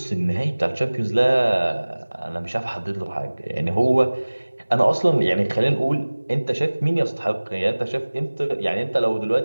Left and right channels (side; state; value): both; inverted; correlation -1.00